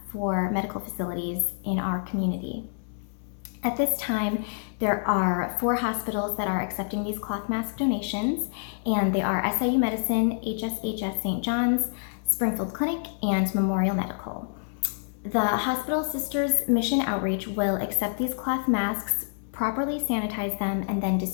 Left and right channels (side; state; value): right; silent; digital silence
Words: for medical facilities in our community. At this time, there are 4 hospitals that are accepting these cloth mask donations, and they are SIU Medicine, HSHS St. John's, Springfield Clinic, and Memorial Medical. The Hospital Sisters Mission Outreach will accept these cloth masks, properly sanitize them, and then